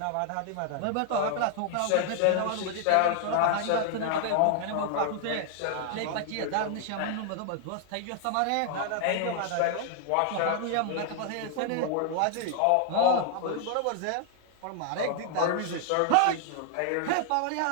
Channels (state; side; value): different; both; correlation 0.00